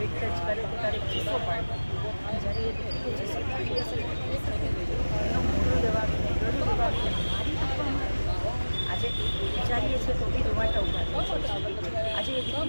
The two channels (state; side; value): inverted; both; correlation -1.00